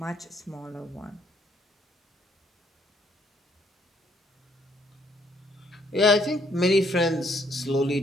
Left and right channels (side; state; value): both; normal; correlation 0.67